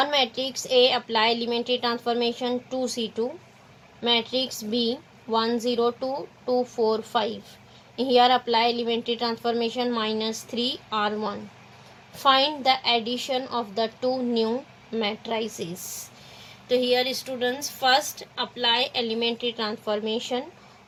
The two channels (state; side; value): identical; both; correlation 1.00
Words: matrix A apply elementary transformation 2C2. Matrix B 1 0 2 2 4 5. Here apply elementary transformation minus 3 R1. Find the addition of the two new matrices. So here students first apply elementary transformation